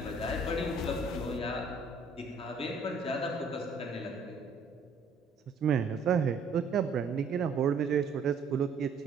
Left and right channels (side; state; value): left; quieter; 3.9 dB